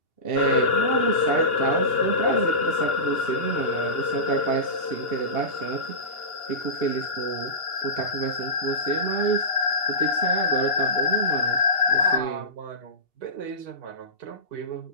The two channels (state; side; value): late; right; 2.8 ms